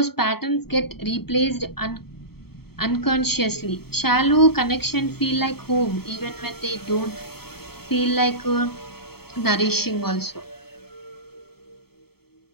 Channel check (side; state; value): right; late; 0.95 ms